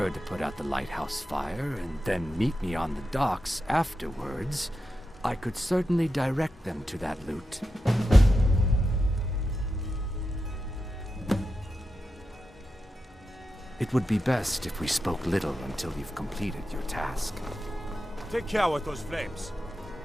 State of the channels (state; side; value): normal; both; correlation 0.89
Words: to put out the lighthouse fire and then meet me on the docks afterwards, I could certainly direct them to that loot. It would be best if we spoke little until you've completed your task. Take care with those flames.